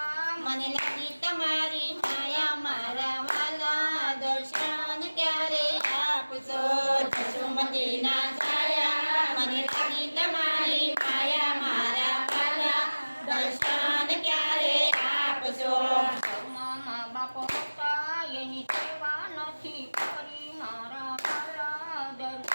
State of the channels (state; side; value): inverted; both; correlation -1.00